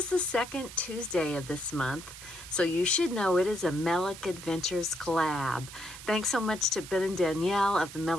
the second Tuesday of this month, so you should know it is a Melick Adventures collab. Thanks so much to Ben and Danielle of the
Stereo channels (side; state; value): right; noise; hiss, 14 dB below the sound